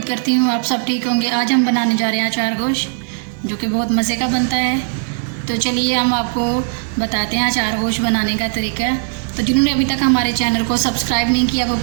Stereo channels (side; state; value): left; silent; digital silence